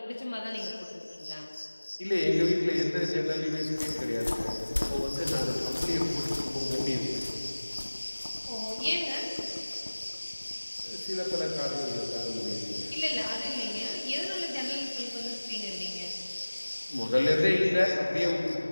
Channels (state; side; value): inverted; both; correlation -1.00